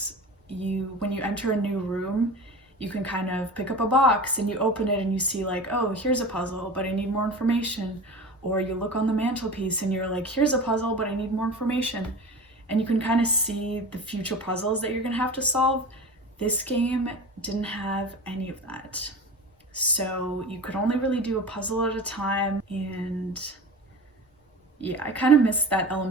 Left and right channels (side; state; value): both; normal; correlation 0.33